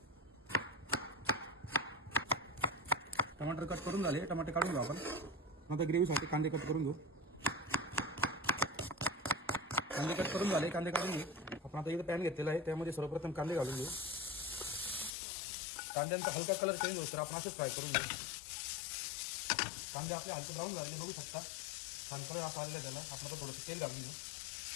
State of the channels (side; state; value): right; drops out; at 15.1 s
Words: टमाटर कट करून झाले, टमाटे काढून घेऊ आपण। नंतर ग्रेव्हीसाठी कांदे कट करून घेऊ। कांदे कट करून झाले, कांदे काढून घेऊ आपण। आता इथे पॅन घेतलेला आहे, त्यामध्ये सर्वप्रथम कांदे घालून घेऊ। कांद्यांचा हलका कलर चेंज होतो, आपण असेच फ्राय करून घेऊ। कांदे आपले हलके ब्राऊन झालेले बघू शकता, हलकं आता आलेलं त्याला आपण आता थोडंसं तेल घालून घेऊ।